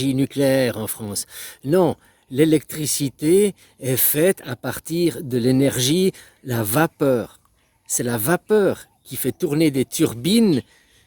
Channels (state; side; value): identical; both; correlation 1.00